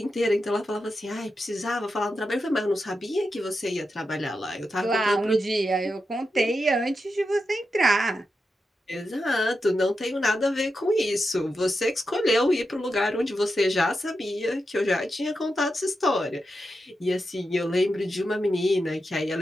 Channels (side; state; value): both; normal; correlation 0.88